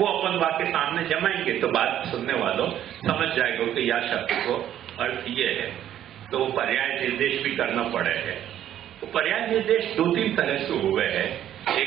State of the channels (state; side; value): quieter; left; 11.2 dB